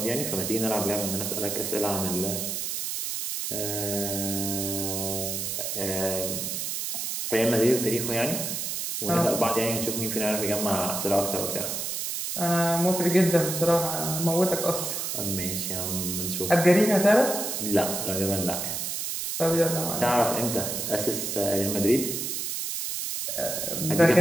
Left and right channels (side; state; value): right; noise; hiss, 3 dB below the sound